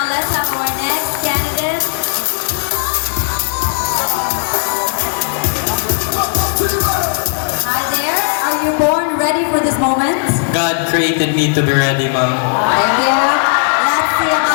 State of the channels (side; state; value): right; silent; digital silence